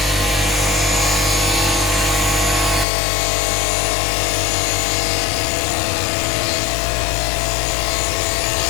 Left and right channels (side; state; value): right; drops out; at 2.9 s